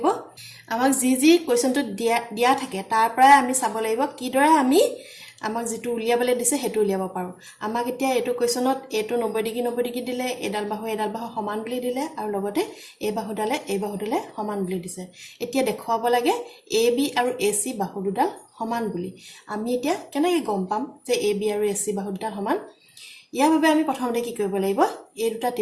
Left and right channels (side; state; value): both; identical; correlation 1.00